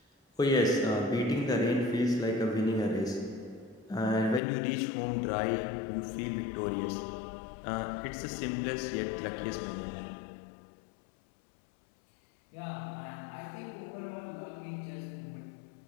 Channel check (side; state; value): right; drops out; at 4.4 s